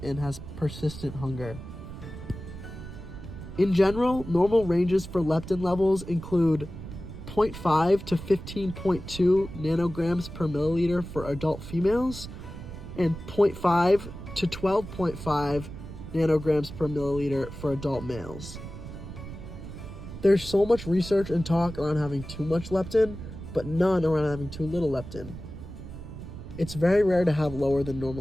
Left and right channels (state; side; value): noise; right; rumble, 11 dB below the sound